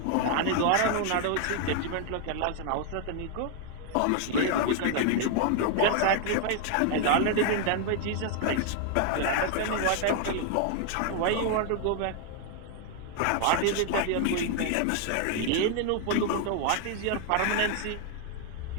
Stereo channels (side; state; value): both; different; correlation 0.00